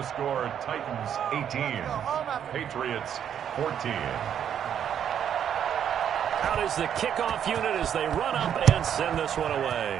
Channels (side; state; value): left; quieter; 9.0 dB